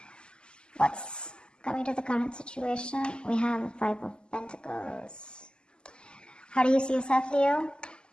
what's coming to the current situation? We have the Five of Pentacles. How do you see yourself, Leo?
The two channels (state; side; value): late; right; 0.048 ms